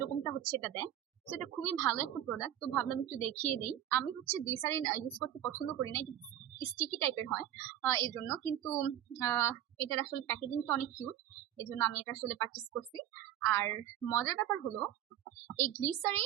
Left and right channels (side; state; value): left; quieter; 11.6 dB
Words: রকমটা হচ্ছে এটা দেয়। তো এটা খুবই ভালো একটা প্রোডাক্ট, তো ভাবলাম একটু দেখিয়ে দিই। আমি হচ্ছে গ্লিসারিন ইউজ করতে পছন্দ করি না, স্টিকি টাইপের হয় এই জন্য, কিন্তু এটার আসলে প্যাকেজিংটা অনেক কিউট, এই জন্য আমি এটা আসলে পারচেস করছি। আর মজার ব্যাপার হলো এই